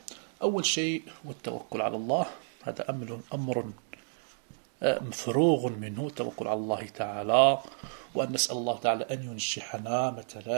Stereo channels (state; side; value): silent; left; digital silence